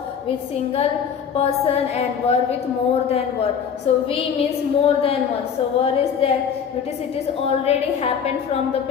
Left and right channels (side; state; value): right; quieter; 7.3 dB